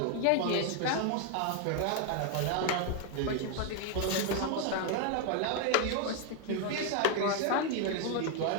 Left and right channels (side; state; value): both; different; correlation 0.01